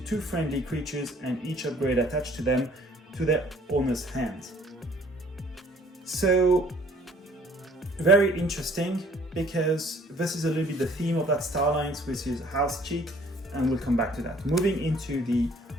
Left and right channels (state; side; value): normal; both; correlation 0.57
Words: friendly creatures and each upgrade attached to them to their owner's hand. So, very interesting, because this is a little bit the theme of that Star Alliance, which is house cheat, and we'll come back to that. Moving into the